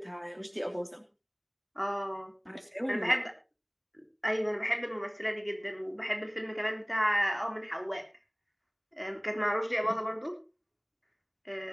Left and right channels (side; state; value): both; identical; correlation 1.00